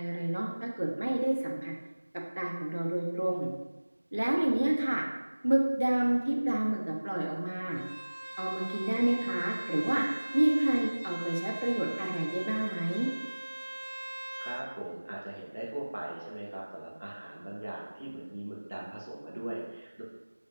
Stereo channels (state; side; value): inverted; both; correlation -1.00